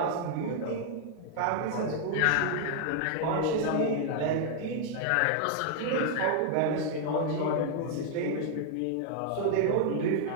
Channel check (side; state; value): both; different; correlation 0.00